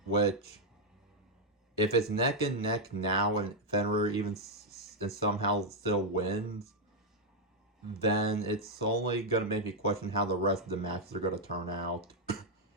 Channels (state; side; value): normal; both; correlation -0.01